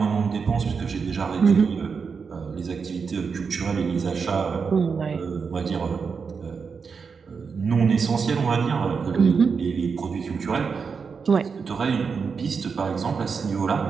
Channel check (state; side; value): quieter; left; 5.6 dB